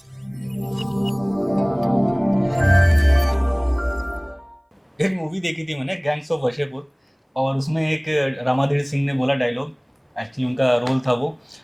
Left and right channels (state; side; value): identical; both; correlation 1.00